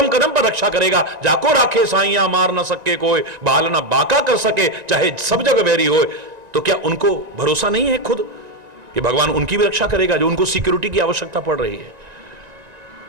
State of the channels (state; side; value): late; left; 1.9 ms